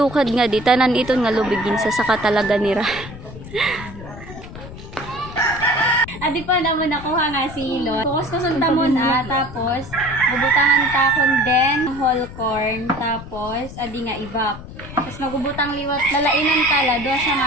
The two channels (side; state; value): left; noise; rumble, 13 dB below the sound